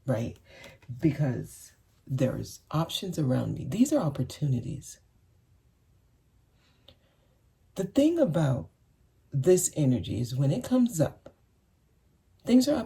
right? Because there's options around me. These are opportunities. The thing about this energy is when it comes up, things are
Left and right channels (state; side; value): identical; both; correlation 1.00